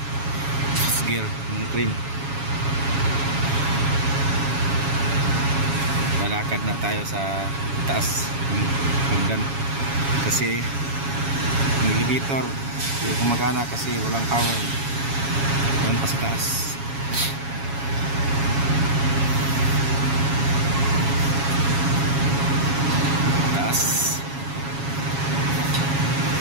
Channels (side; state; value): left; late; 7.3 ms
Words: gear ng crane. Lalakad na tayo sa taas ng hagdan kasi yung elevator hindi gumagana kasi walang power. Doon pa sa taas.